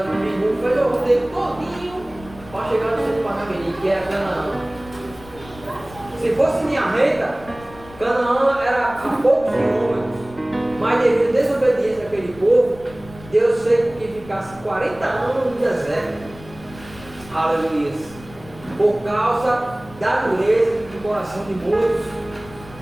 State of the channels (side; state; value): left; noise; rumble, 19 dB below the sound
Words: do Pingu, fez o roteiro todinho para chegar no centro de Parnamirim, que era Canaã. Se fosse linha reta, Canaã era a poucos quilômetros, mas devido à desobediência daquele povo, Deus fez que ficasse 40 anos no deserto. Aleluia. Por causa da dureza do coração de muitos.